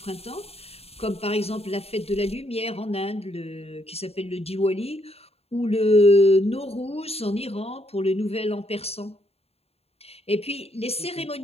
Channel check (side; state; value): right; late; 0.29 ms